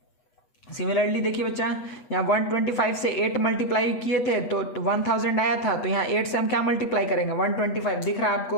सिमिलरली देखिए बच्चा, यहाँ 125 से 8 मल्टीप्लाई किए थे तो 1000 आया था, तो यहाँ 8 से हम क्या मल्टीप्लाई करेंगे, 125 दिख रहा है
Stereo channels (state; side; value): late; right; 8.2 ms